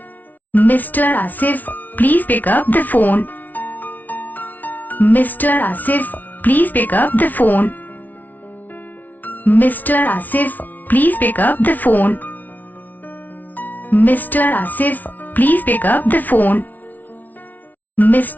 Mr. Ashif, please pick up the phone. Mr. Ashif, please pick up the phone. Mr. Ashif, please pick up the phone. Mr. Ashif, please pick up the phone.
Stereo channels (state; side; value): late; right; 0.079 ms